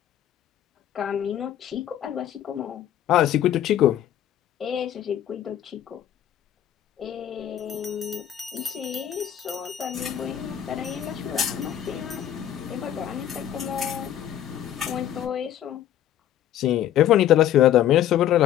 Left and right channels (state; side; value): quieter; right; 11.2 dB